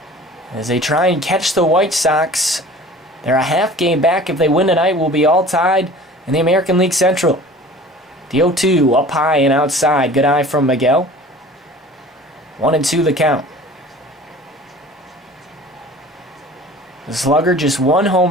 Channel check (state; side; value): normal; both; correlation 0.44